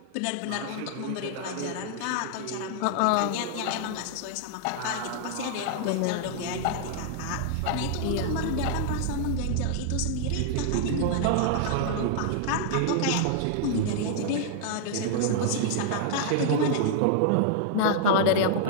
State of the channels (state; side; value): different; both; correlation -0.01